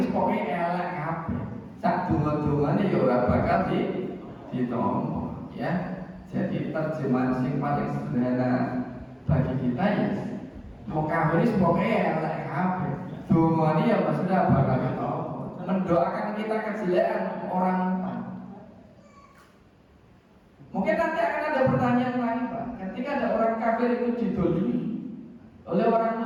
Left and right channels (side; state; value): both; identical; correlation 1.00